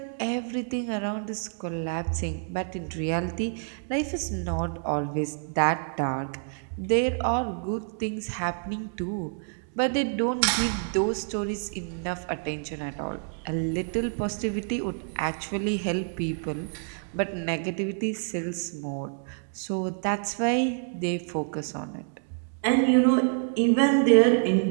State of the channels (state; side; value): silent; left; 60 dB below the other